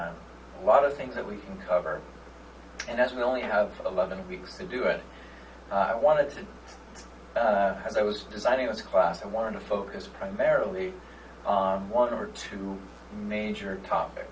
a lot of things that we can cover, and as we only have 11 weeks to do it, I wanted to, as I was designing this class, I wanted to focus primarily on one or two major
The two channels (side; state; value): both; identical; correlation 1.00